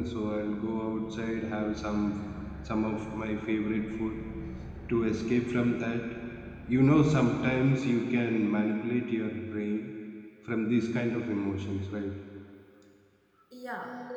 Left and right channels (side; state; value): both; identical; correlation 1.00